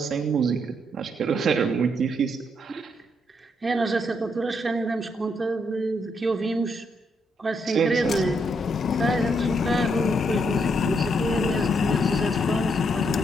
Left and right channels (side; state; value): both; normal; correlation 0.76